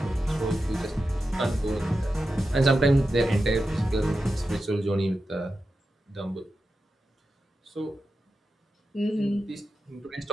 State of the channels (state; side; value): normal; both; correlation 0.91